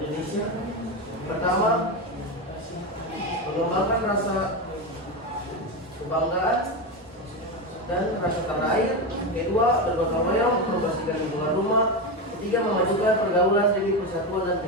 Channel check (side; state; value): both; normal; correlation 0.15